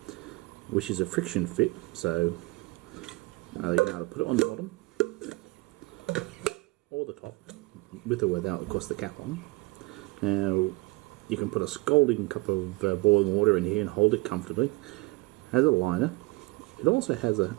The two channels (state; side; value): quieter; left; 24.2 dB